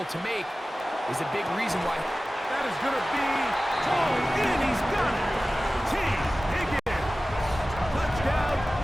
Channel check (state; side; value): normal; both; correlation 0.96